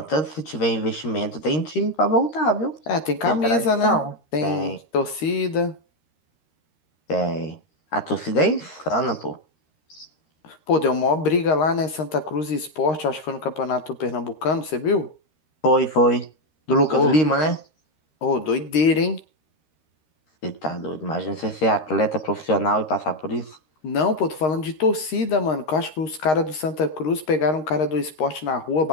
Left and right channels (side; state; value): right; late; 13 ms